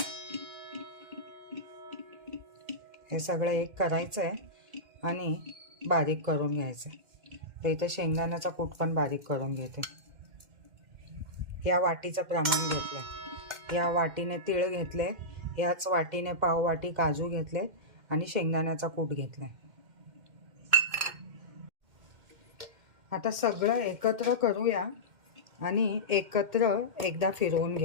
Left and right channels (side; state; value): left; late; 2.1 ms